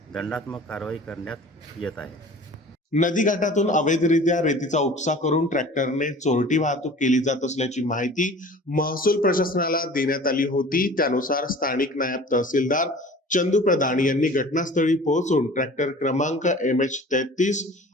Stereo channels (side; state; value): both; normal; correlation 0.43